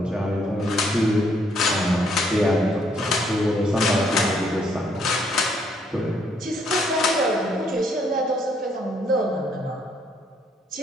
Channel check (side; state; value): both; normal; correlation 0.69